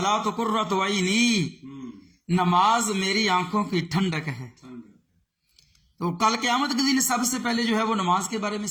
قرۃ عینی، نماز میری آنکھوں کی ٹھنڈک ہے۔ تو کل قیامت کے دن سب سے پہلے جو ہے وہ نماز کے بارے میں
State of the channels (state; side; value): identical; both; correlation 1.00